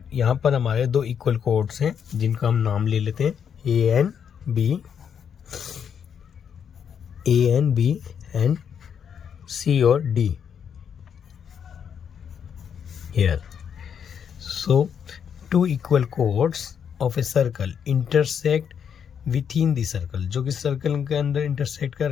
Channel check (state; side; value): quieter; right; 7.8 dB